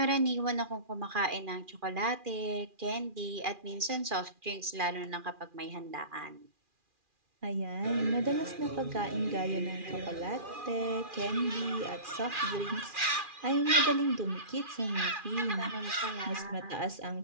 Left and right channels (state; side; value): late; left; 2.4 ms